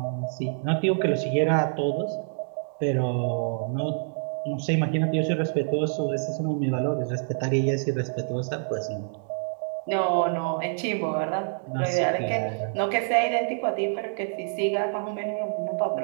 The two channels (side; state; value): left; silent; digital silence